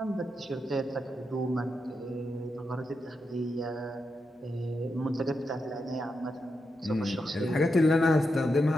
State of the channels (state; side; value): normal; both; correlation 0.86